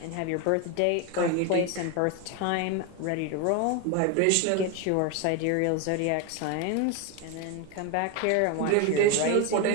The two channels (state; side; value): different; both; correlation 0.02